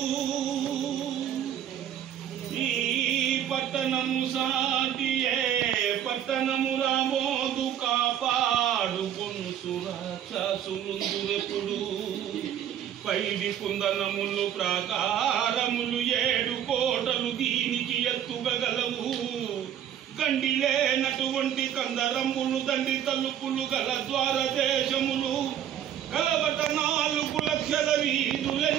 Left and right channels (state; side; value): quieter; left; 10.2 dB